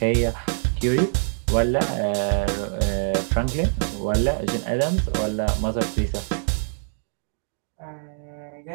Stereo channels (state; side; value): silent; left; digital silence